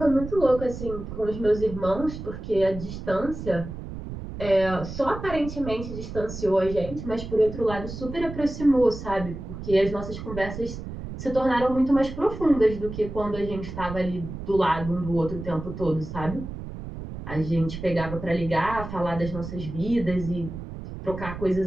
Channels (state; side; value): noise; right; rumble, 9 dB below the sound